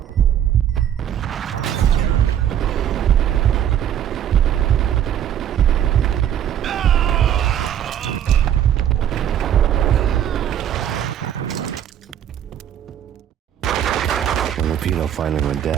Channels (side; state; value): left; quieter; 10.0 dB